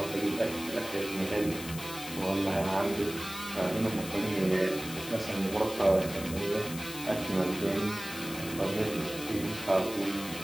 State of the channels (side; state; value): left; noise; hiss, 11 dB below the sound